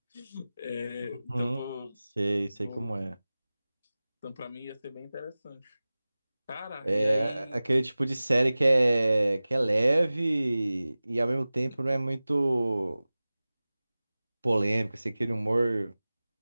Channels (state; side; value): inverted; both; correlation -0.97